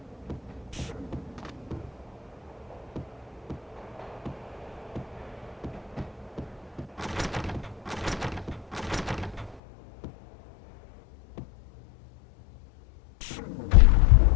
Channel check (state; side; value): drops out; right; at 9.6 s